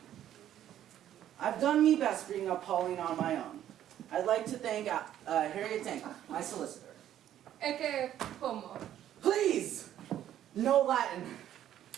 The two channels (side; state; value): left; quieter; 11.4 dB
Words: I've done me best bringing up Pauline on my own. I'd like to thank Harriet Tank, my solicitor. Ecce homo. Please! No Latin.